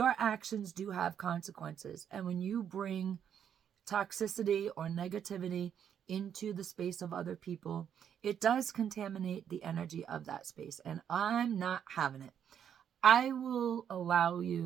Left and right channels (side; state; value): left; quieter; 8.7 dB